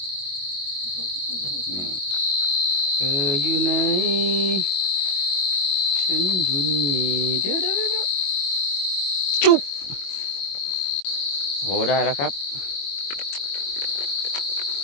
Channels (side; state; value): right; late; 21 ms